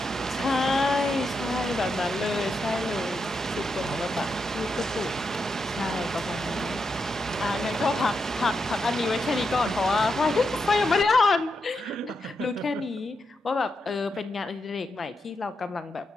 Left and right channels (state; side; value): normal; both; correlation 0.84